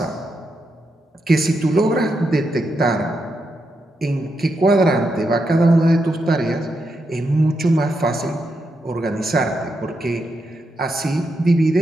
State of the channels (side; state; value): both; normal; correlation 0.84